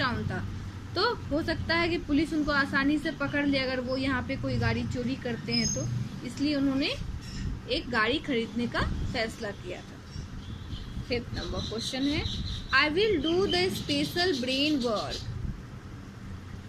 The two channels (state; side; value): identical; both; correlation 1.00